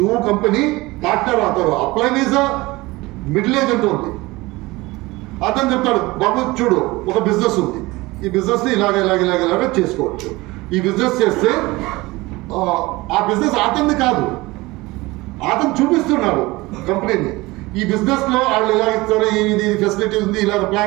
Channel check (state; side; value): quieter; left; 21.3 dB